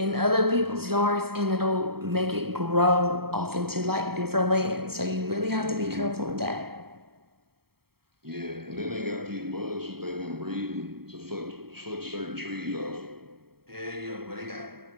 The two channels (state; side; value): late; left; 0.95 ms